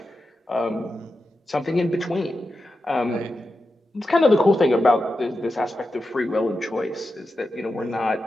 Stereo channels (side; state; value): both; normal; correlation 0.90